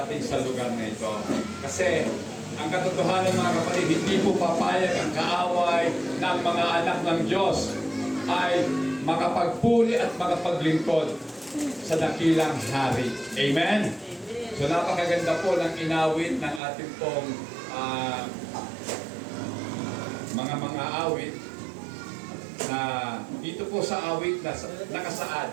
sa lugar na ito. Kasi ang katotohanan mga kapatid, hindi po papayag ang kaaway ng mga anak ng Diyos ay makapagpuri at makapaglingkod sa dakilang hari. Amen? So napakaganda po ng inawit ng ating pong mga awit na dito po sa awit na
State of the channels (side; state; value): left; drops out; at 16.6 s